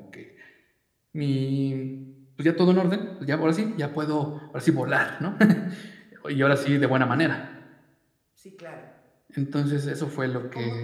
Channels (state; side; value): identical; both; correlation 1.00